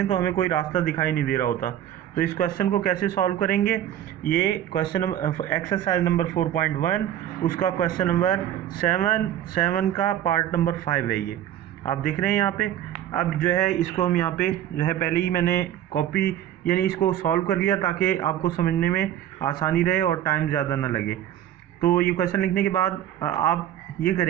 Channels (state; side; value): quieter; left; 11.4 dB